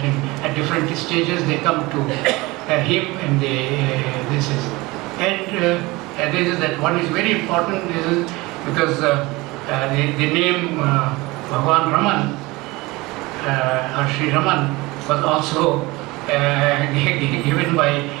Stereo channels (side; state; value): left; quieter; 22.1 dB